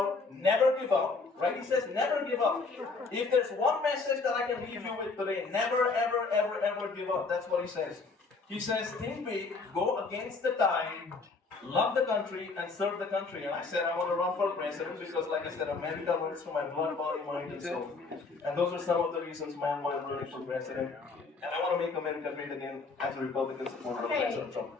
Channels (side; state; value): right; quieter; 4.1 dB